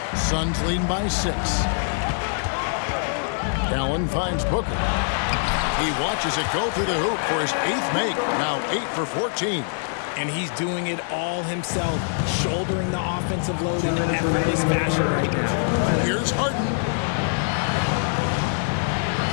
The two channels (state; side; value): silent; right; digital silence